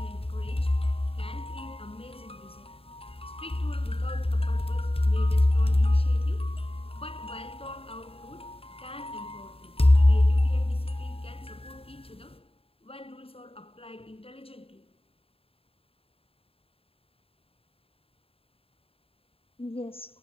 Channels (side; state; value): right; late; 0.27 ms